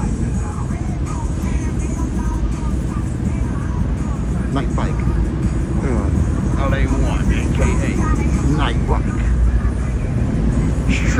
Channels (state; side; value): identical; both; correlation 1.00